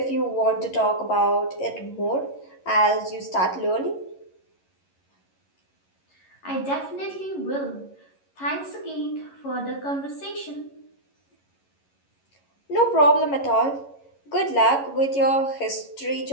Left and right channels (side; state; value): right; late; 11 ms